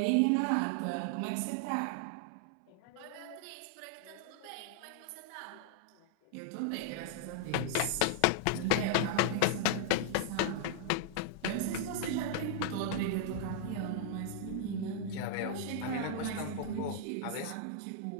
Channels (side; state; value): both; different; correlation -0.01